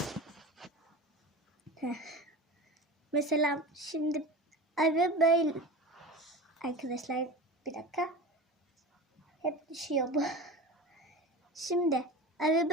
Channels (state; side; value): normal; both; correlation 0.31